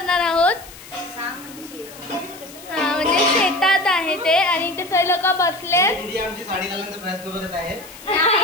आहोत. हा म्हणजे शेतात आहे ते आणि इथे सगळे लोक बसले. आमची साडी घालण्याचा प्रयत्न करत आहे.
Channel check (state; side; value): noise; left; hiss, 18 dB below the sound